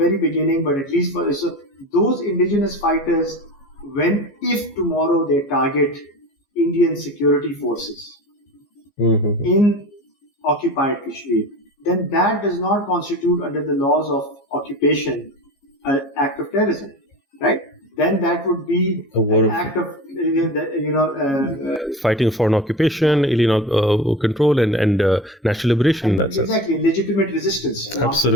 beginning, but at least those indigenous fighters, if tomorrow they target Indian security forces in occupied Kashmir, then that does not constitute under the laws of occupation an act of terrorism, right? Then that would be an act of fighting for an occupation, alien control, and national liberation in that sense. Exactly, legitimate resistance.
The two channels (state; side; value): normal; both; correlation 0.32